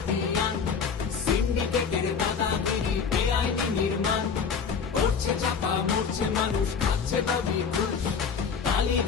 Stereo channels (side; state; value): right; quieter; 6.1 dB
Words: সিন্ডিকেটের দাদাগিরি বেআইনি নির্মাণ করছে চাপা মরছে মানুষ খাচ্ছে দাবি ঘুষ